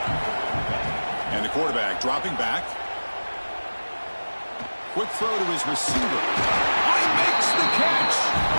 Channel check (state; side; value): inverted; both; correlation -1.00